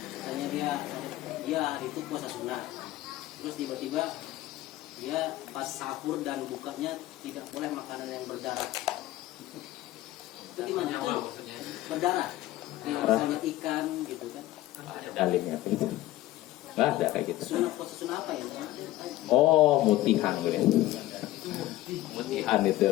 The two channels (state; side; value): quieter; right; 15.9 dB